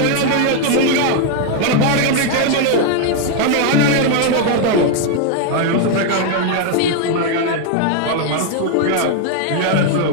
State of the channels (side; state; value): both; different; correlation 0.00